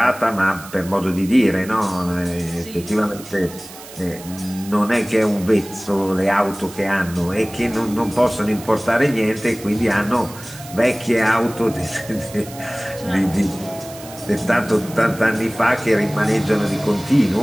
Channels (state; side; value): noise; right; hiss, 17 dB below the sound